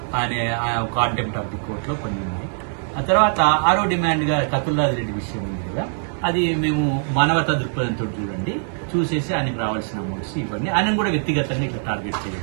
కాంటెంప్ట్ ఆఫ్ ది కోర్టులో కొన్ని ఉన్నాయి. ఆ తర్వాత 6వ డిమాండ్గా కతుల్లాది రెడ్డి విషయం ఉంది కదా, అది మేము మానవతా దృక్పథంతో చూసేసి ఆయనకు రావాల్సిన అమౌంట్స్ ఇవన్నీ ఆయన కూడా వ్యక్తిగతంగా ఇట్లా టార్గెట్ చేయాలి.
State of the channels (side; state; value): left; silent; 64 dB below the other